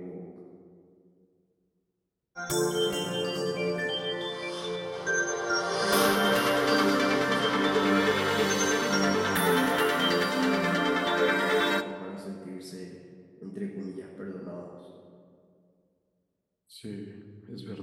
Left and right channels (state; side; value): identical; both; correlation 1.00